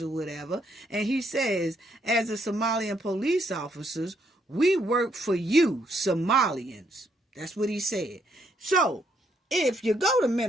or whatever. And he says, as a Somalian police officers, we work for you, Somalians. That's what he said. So, if you go to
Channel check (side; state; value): both; normal; correlation 0.73